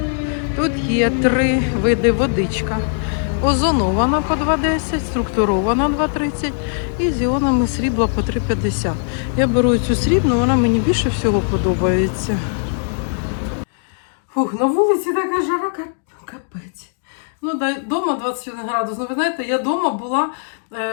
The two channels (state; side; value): silent; right; 66 dB below the other